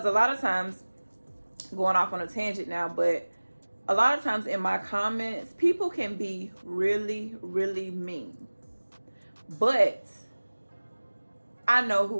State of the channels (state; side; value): inverted; both; correlation -1.00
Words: a lot of times, going off on a tangent now, but a lot of times in my comments, people can be really, really mean. But I know